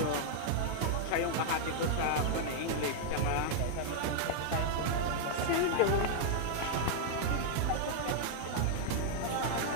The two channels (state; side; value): different; both; correlation -0.01